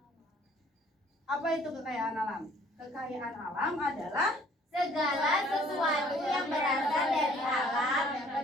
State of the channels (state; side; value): normal; both; correlation 0.58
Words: apa itu kekayaan alam. Kekayaan alam adalah Segala sesuatu yang berasal dari alam